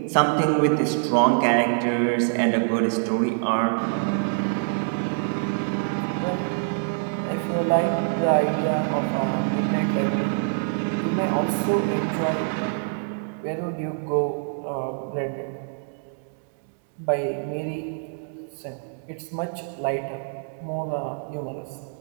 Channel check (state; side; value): silent; left; digital silence